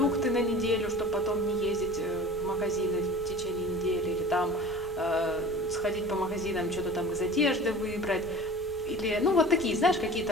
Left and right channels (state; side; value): normal; both; correlation 0.40